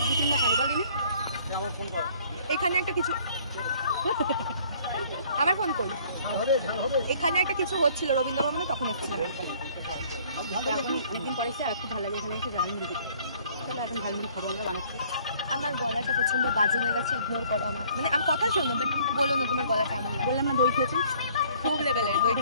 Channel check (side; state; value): both; inverted; correlation -0.58